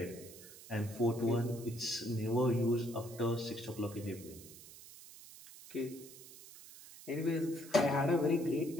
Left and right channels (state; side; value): noise; right; hiss, 17 dB below the sound